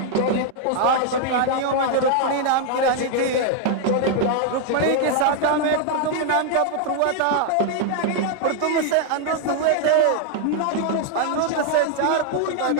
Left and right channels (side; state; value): both; different; correlation 0.00